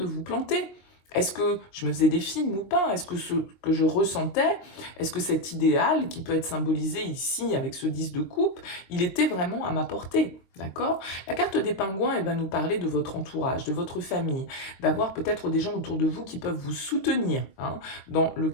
vous planter. Est-ce que je me faisais des films ou pas? Est-ce que ce que je ressentais, est-ce que cet idéal qui peut être symbolisé ici avec ce 10 de coupe, il était vraiment à ma portée? D'accord? La carte des pingouins, elle va nous parler de votre entourage, de votre famille, d'avoir peut-être des gens autour de vous qui peuvent vous soutenir hein, dans le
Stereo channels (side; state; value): right; late; 22 ms